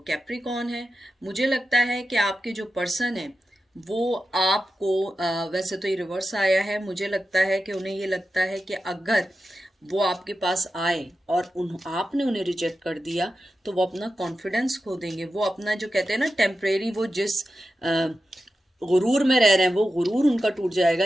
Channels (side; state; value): both; normal; correlation 0.91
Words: कैप्रिकॉन है। मुझे लगता है कि आपके जो पर्सन है वो आपको वैसे तो ये रिवर्स आया है, मुझे लगता है कि उन्हें ये लगता है कि अगर वो आपके पास आए और आपने उन्हें रिजेक्ट कर दिया तो वो अपना कॉन्फिडेंस खो देंगे। वो अपना जो कहते हैं ना टेम्परेरी, वो जिस गुरूर में रह रहे हैं वो गुरूर उनका टूट जाएगा